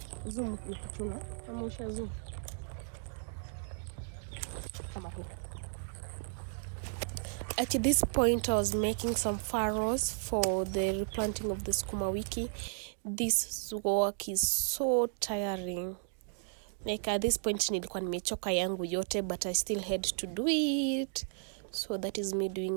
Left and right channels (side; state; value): left; silent; digital silence